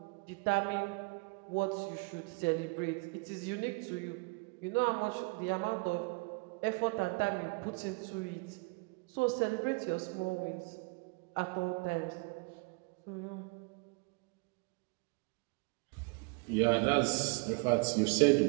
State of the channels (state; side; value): quieter; left; 30.5 dB